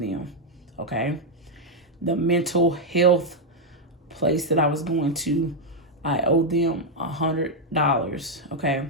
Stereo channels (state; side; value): normal; both; correlation 0.00